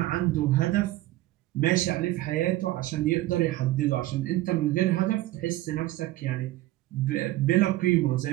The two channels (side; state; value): left; quieter; 16.6 dB